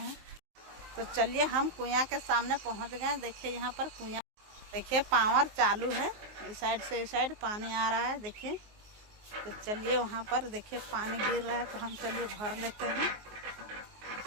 तो चलिए हम कुआं के सामने पहुंच गए। देखिए यहाँ पर कुआं, देखिए पावर चालू है, इस साइड से इस साइड पानी आ रहा है देखिए। तो चलिए वहाँ पर देखिए पानी गिर रहा है तो हम चलिए भर लेते हैं।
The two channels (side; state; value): left; late; 19 ms